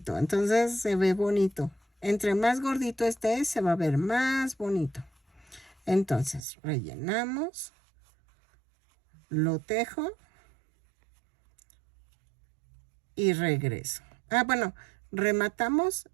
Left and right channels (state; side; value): drops out; left; at 6.4 s